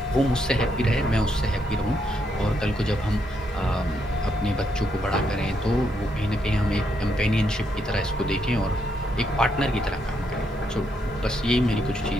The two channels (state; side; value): normal; both; correlation 0.77